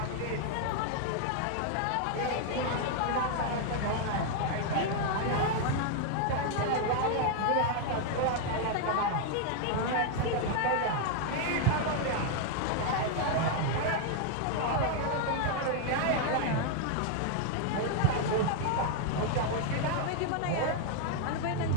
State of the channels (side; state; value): both; different; correlation 0.00